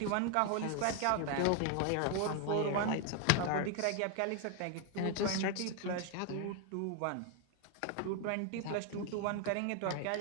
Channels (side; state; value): both; different; correlation 0.01